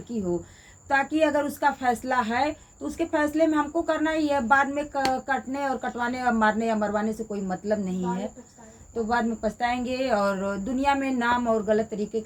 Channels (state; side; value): identical; both; correlation 1.00